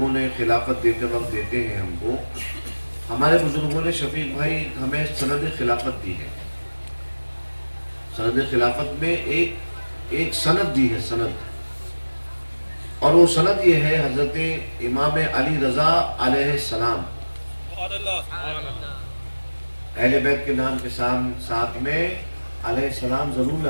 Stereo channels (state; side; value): inverted; both; correlation -1.00